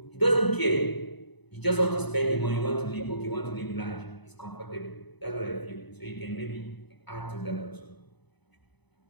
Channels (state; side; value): late; right; 1.0 ms